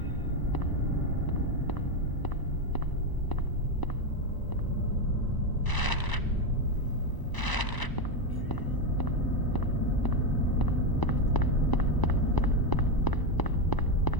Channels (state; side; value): late; right; 1.0 ms